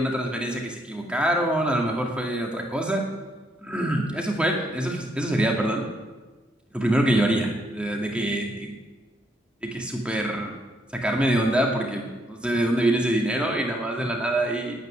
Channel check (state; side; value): normal; both; correlation 0.73